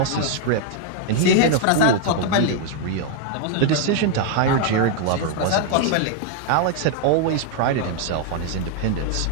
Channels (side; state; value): both; different; correlation 0.00